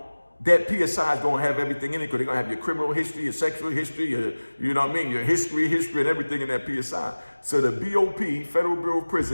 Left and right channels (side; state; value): both; inverted; correlation -1.00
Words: that PSI is going to have everything in it, because they're going to have your criminal history, your sexual history, you know what I mean, your history and everything in that PSI. So the BOP, Federal Bureau of